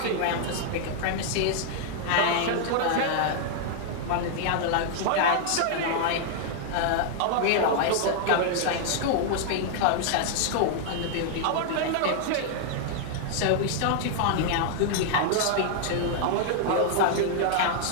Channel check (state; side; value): different; both; correlation -0.01